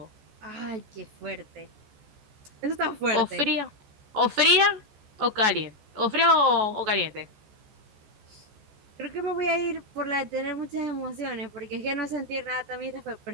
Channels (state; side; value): late; left; 14 ms